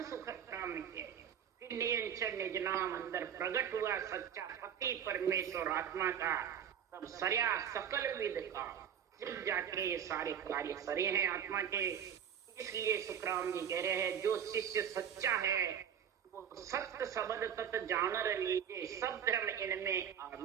सुखराम के फिर नियंत्रण निज नाम अंदर प्रकट हुआ सच्चा पति परमेश्वर आत्मा का, तब सरया सकल विद का सिर्फ जाके ये सारे कार्य सरे हैं आत्मा के। इसलिए सुखराम जी कह रहे हैं जो शिष्य सच्चा है वो सत्य शब्द तत् जानर लीजिए सब धर्म इनमें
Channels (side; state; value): left; quieter; 8.6 dB